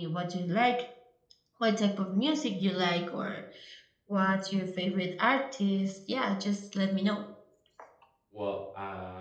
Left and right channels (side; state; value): both; identical; correlation 1.00